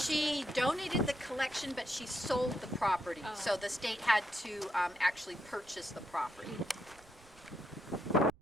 donated the collection, but she sold the property, Oh. so the state had to actually purchase the property.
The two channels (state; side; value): noise; right; rumble, 25 dB below the sound